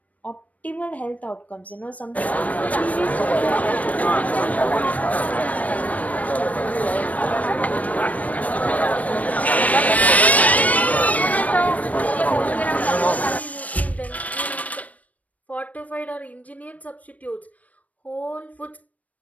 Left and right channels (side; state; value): right; late; 0.070 ms